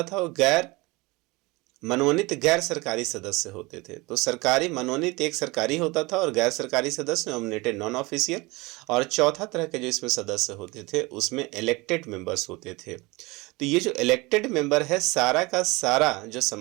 था वो गैर मनोनीत गैर सरकारी सदस्य होते थे। तो सरकारी मनोनीत एक सरकारी होता था और गैर सरकारी सदस्य नॉमिनेटेड नॉन ऑफिशियल। और चौथा तरह के जो इसमें सदस्य होते थे उसमें इलेक्टेड मेंबर्स होते थे। तो ये जो इलेक्टेड मेंबर है, सारा का सारा जो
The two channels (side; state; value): left; quieter; 23.7 dB